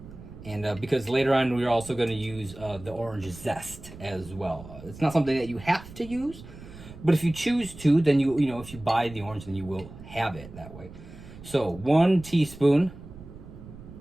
And because later on we're also going to use the orange zest as well. It's not something that you have to use, but if you choose to, then if you buy the orange, then you will have it that way. So 1 teaspoon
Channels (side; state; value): right; noise; rumble, 16 dB below the sound